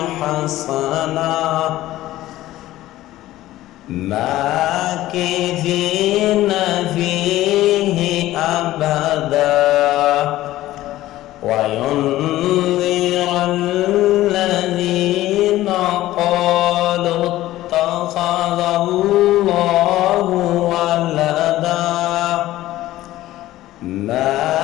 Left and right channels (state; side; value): quieter; right; 15.4 dB